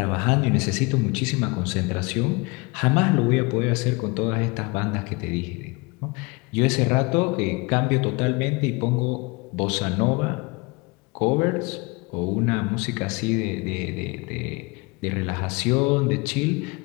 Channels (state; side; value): quieter; right; 26.6 dB